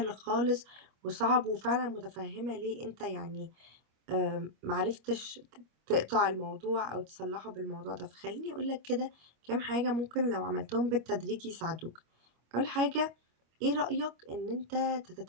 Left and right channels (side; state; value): left; late; 25 ms